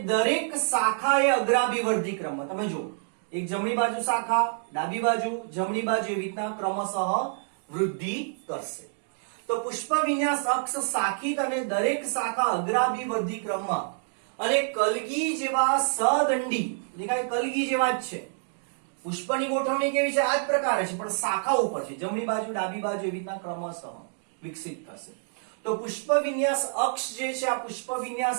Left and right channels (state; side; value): silent; left; digital silence